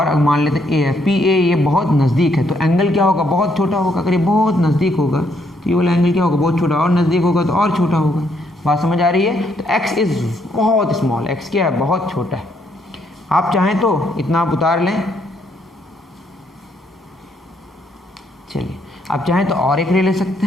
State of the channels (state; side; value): normal; both; correlation 0.72